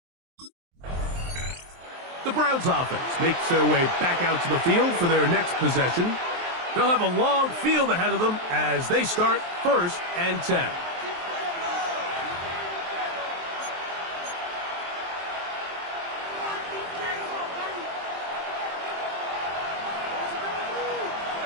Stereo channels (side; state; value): left; late; 23 ms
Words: The Browns offense makes their way back out to the field for their next possession. They'll have a long field ahead of them as they start 1st and 10.